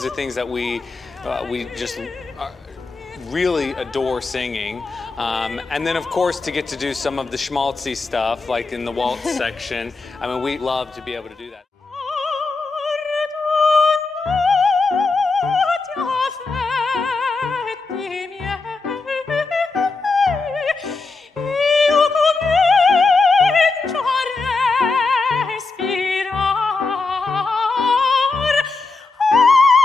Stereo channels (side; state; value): right; quieter; 3.9 dB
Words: are things that we just really adore singing. And then, of course, to get to do some of the schmaltzy stuff, like in the waltz section. I mean, we love to be able to do that.